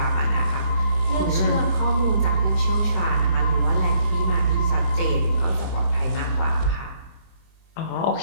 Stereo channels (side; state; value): right; late; 23 ms